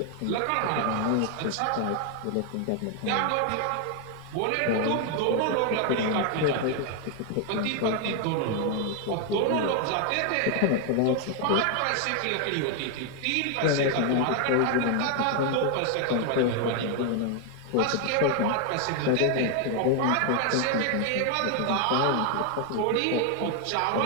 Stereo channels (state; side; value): different; both; correlation 0.01